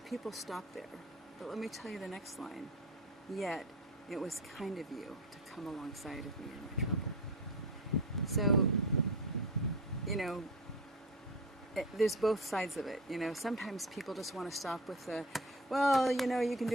stop there, but let me tell you the next line. Yet, it was kind of you to come alongside of me in my trouble. So, there's both sides of it. Sometimes people just want to stop with the, well, you can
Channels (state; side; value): normal; both; correlation 0.29